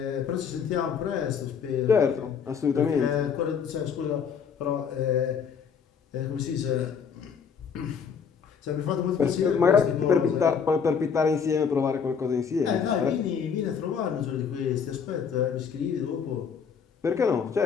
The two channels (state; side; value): quieter; right; 6.7 dB